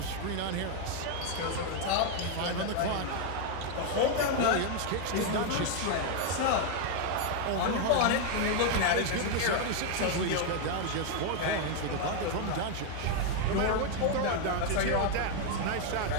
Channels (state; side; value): different; both; correlation 0.01